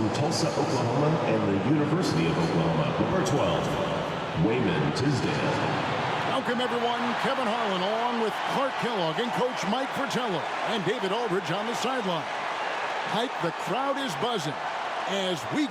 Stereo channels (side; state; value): both; identical; correlation 1.00